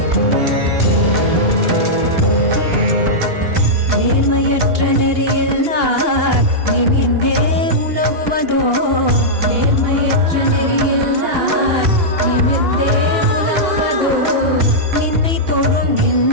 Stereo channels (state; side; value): late; left; 2.8 ms